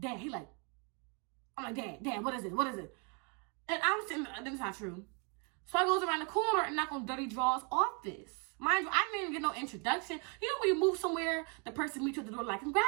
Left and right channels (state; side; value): quieter; left; 35.8 dB